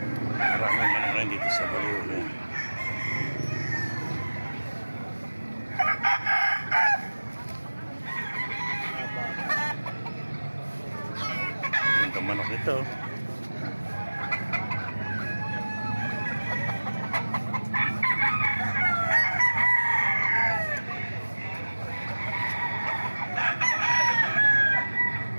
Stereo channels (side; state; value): both; inverted; correlation -1.00